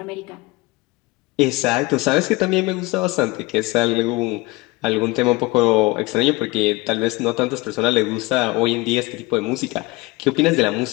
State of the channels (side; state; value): right; quieter; 22.3 dB